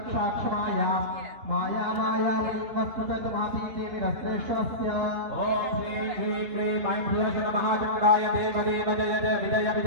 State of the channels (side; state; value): left; late; 2.9 ms